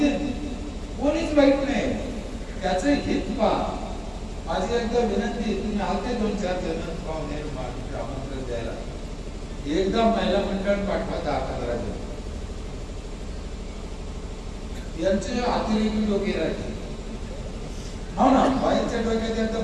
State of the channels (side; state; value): both; identical; correlation 1.00